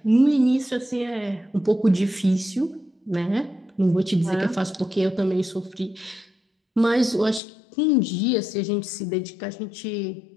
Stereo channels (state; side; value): drops out; right; at 7.4 s